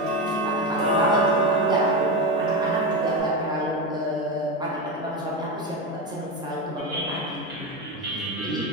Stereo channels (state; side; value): normal; both; correlation 0.17